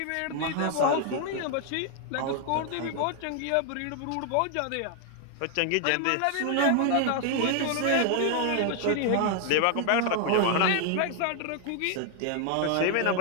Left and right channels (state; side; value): different; both; correlation 0.00